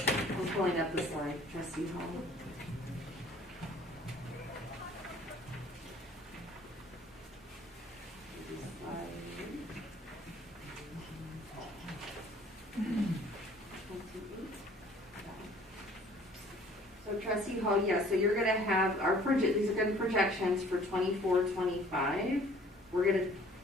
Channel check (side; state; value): both; normal; correlation 0.54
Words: pulling up the slide, Trustee Hall. So Trustee Hall, yeah, so you're gonna have these are gonna be projections for 24-25. We're gonna